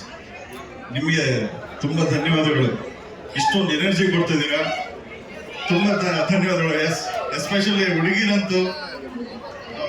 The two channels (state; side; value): identical; both; correlation 1.00